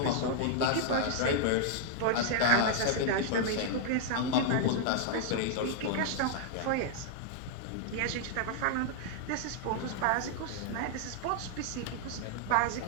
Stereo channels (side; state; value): both; different; correlation -0.01